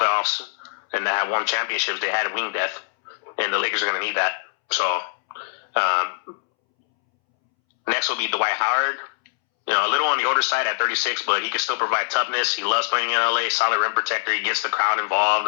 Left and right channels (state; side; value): silent; right; 64 dB below the other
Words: and that have won championships, they had wing depth, and the Lakers are going to need that. So next will be Dwight Howard. A little on the older side at 36, but he can still provide toughness. He loves playing in LA, solid rim protector. He gets the crowd involved.